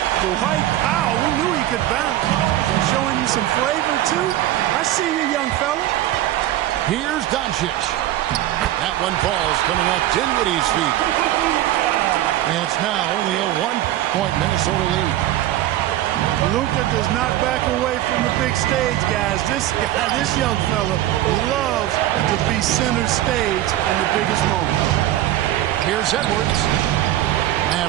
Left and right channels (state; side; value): quieter; left; 13.8 dB